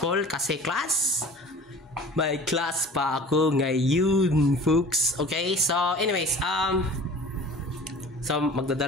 kasi class. May class pa ako ngayon, folks. Okay, so anyways, so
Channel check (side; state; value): both; normal; correlation 0.42